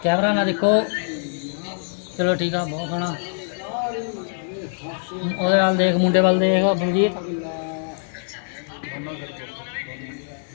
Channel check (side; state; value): right; silent; digital silence